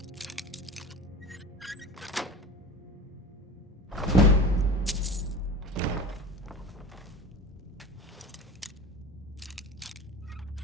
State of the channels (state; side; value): normal; both; correlation 0.34